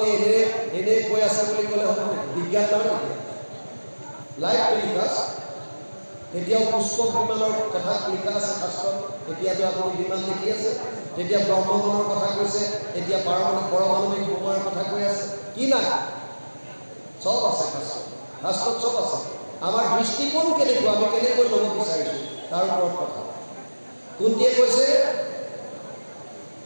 এনেই কৈ আছে বুলি ক'লে হ'ব বিজ্ঞান নহয় নেকি লাইভ টেলিকাষ্ট এতিয়াও পুষ্পক বিমানৰ কথা লিখা আছে শাস্ত্ৰত এতিয়াতো আপুনি বিমান দেখি আছে তেতিয়া ব্ৰহ্মগণৰ কথা কৈছে এতিয়া পাৰমাণৱিক বোমাৰ কথা কৈ আছে কি নাই চব আছে শাস্ত্ৰত চব আছে আমাৰ দৃষ্টিকোণ কেনেকুৱা আমি কেনেকৈ ল'ব বিচাৰিছোঁ তাৰ ওপৰত কথা কুন্তীয়ে কৈছে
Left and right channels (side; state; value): both; inverted; correlation -1.00